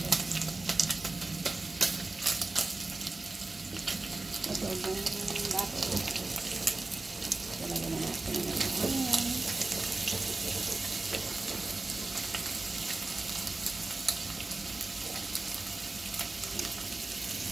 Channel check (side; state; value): left; quieter; 3.3 dB